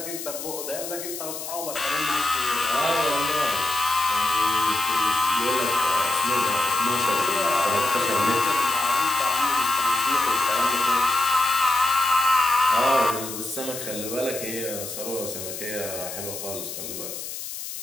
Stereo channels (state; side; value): noise; left; hiss, 8 dB below the sound